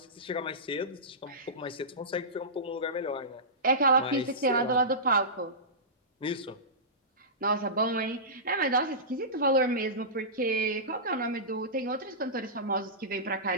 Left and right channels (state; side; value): normal; both; correlation -0.19